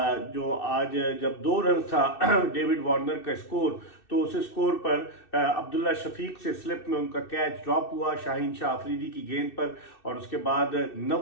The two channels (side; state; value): right; late; 2.6 ms